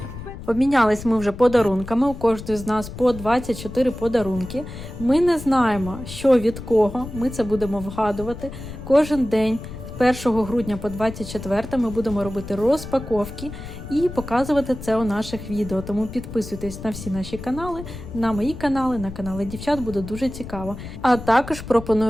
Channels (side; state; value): left; noise; rumble, 11 dB below the sound